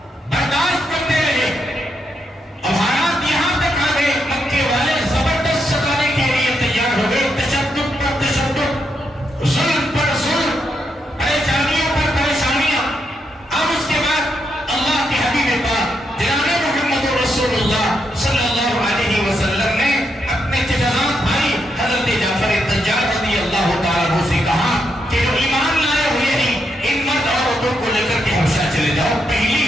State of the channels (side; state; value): both; normal; correlation 0.81